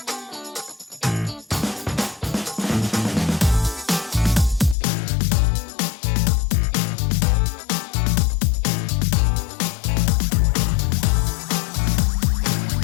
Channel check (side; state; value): right; drops out; at 4.8 s